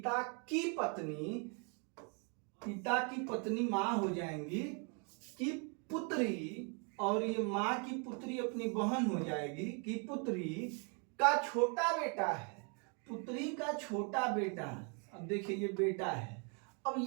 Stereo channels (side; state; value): left; quieter; 37.0 dB